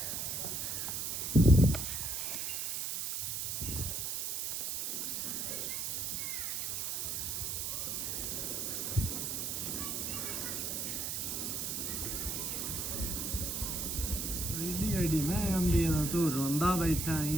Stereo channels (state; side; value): noise; right; hiss, 1 dB below the sound